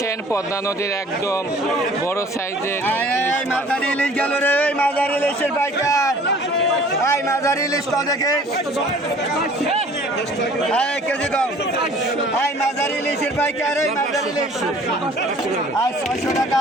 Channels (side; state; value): both; normal; correlation 0.51